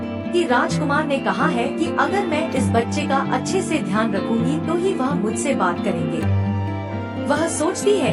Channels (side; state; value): both; identical; correlation 1.00